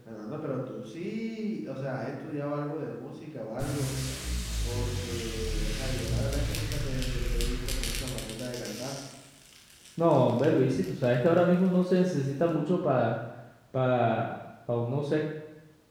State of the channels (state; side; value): identical; both; correlation 1.00